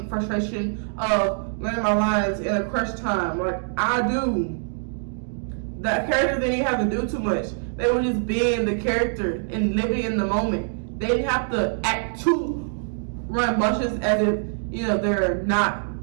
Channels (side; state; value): left; silent; digital silence